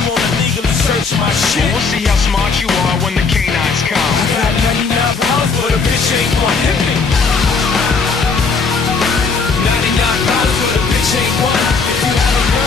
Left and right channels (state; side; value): quieter; right; 4.8 dB